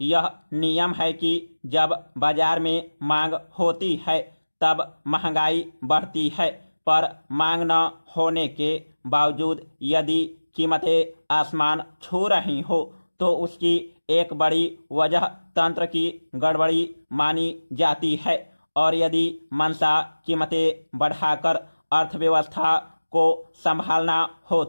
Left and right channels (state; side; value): inverted; both; correlation -1.00